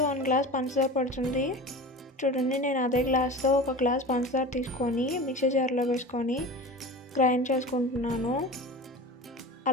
1 గ్లాస్ పంచదార పడుతుంది. చూడండి, నేను అదే గ్లాస్తో 1 గ్లాస్ పంచదార తీసుకొని మిక్సీ జార్లో వేసుకొని గ్రైండ్ చేసుకుంటున్నాను.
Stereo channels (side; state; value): both; normal; correlation 0.33